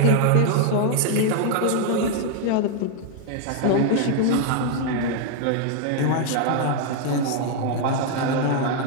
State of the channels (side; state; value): both; different; correlation 0.00